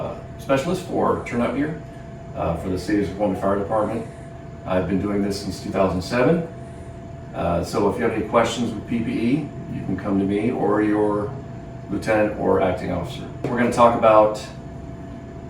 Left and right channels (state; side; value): identical; both; correlation 1.00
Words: specialist for turnout gear for the City of Snoqualmie Fire Department. I've been doing this since 2007. So if you have any questions with PPE, you can come to me or your lieutenant or acting officer. We're going to talk about